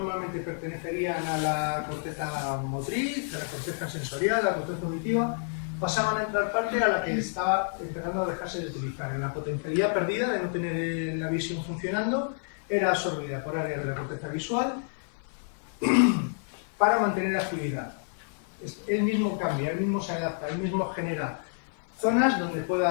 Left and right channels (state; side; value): silent; right; 59 dB below the other